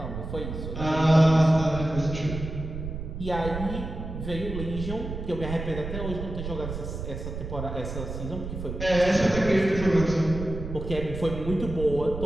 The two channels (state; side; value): noise; right; rumble, 7 dB below the sound